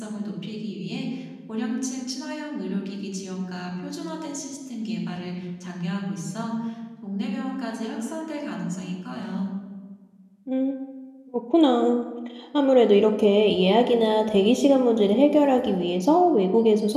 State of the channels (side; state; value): both; identical; correlation 1.00